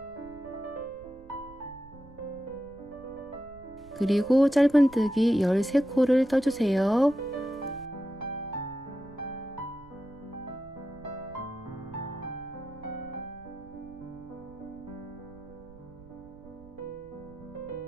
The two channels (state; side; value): noise; right; rumble, 21 dB below the sound